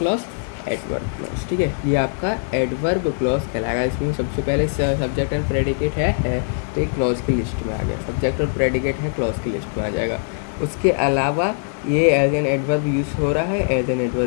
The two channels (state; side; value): silent; right; digital silence